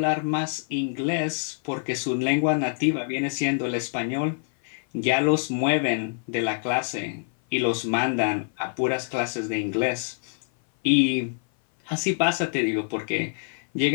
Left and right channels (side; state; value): right; silent; 56 dB below the other